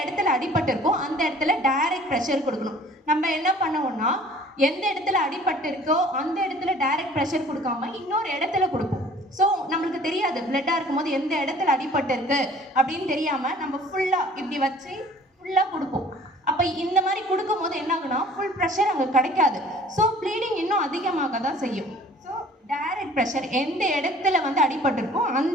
இடத்துல அடிபட்டு இருக்கோ அந்த இடத்துல டைரக்ட் ப்ரெஷர் கொடுக்கணும். நம்ம என்ன பண்ணுவோம்னா எந்த இடத்துல அடிபட்டு இருக்கோ அந்த இடத்துல டைரக்ட் ப்ரெஷர் கொடுக்காம இன்னொரு இடத்துல கொடுப்போம். ஸோ நம்மளுக்கு தெரியாது பிளட்டாக இருக்கும்போது எந்த இடத்துல அடிபட்டு இருக்கு அப்படின்னு தெரியாம நம்ம ஃபுல்லாக இப்படி வச்சு ஃபுல்லாக கொடுப்போம். அப்போ இந்த மாதிரி கொடுக்கும் போது என்ன ஆகுனா ஃபுல் ப்ரெஷர் அங்கே கிடைக்காது. ஸோ ப்ளீடிங் இன்னும் அதிகமாக தான் செய்யும். ஸோ டைரக்ட் ப்ரெஷர் எந்த இடத்துல வந்து அடிபட்டிருக்கோ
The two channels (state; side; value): normal; both; correlation 0.50